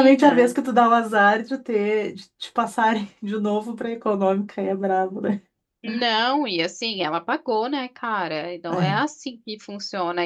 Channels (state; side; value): identical; both; correlation 1.00